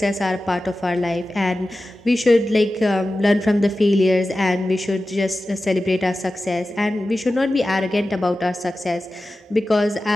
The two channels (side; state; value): both; normal; correlation 0.94